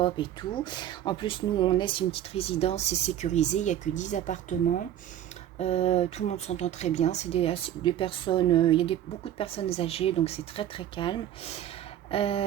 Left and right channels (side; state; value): left; quieter; 11.3 dB